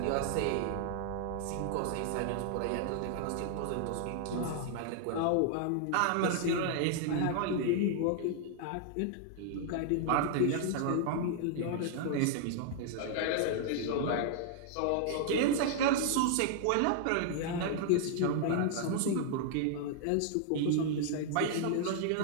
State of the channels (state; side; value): different; both; correlation -0.01